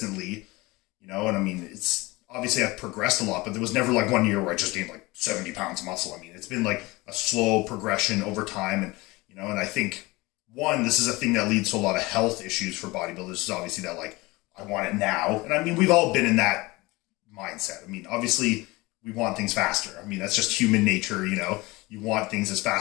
you know, and I mean, it's obviously I've progressed a lot, but there was never like 1 year where I just gained like 70 pounds of muscle. I mean, it's been like a slow progression over time. And, you know, and I think, one, this is a thing that leads to a lot of health issues for bodybuilders. Is obviously that like, I want it now. And I mean, we've all been in that mindset. I mean, obviously we want things faster. I mean, that's just human nature, you know, you want things as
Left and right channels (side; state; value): right; quieter; 22.3 dB